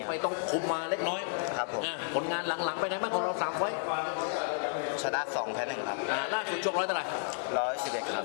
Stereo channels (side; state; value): right; silent; 56 dB below the other